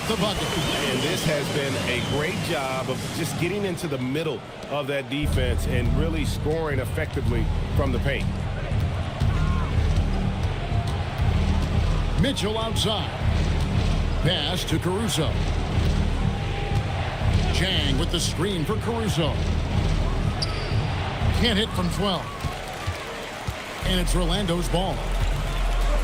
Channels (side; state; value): both; identical; correlation 1.00